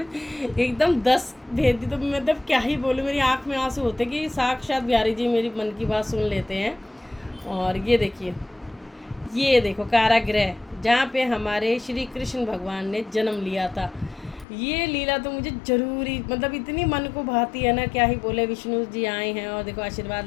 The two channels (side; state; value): right; drops out; at 14.5 s